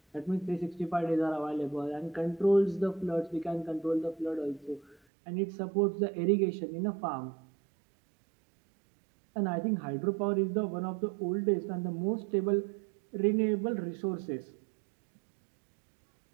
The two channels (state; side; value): drops out; left; at 5.0 s